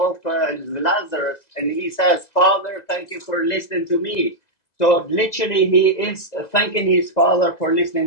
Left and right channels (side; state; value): right; late; 2.0 ms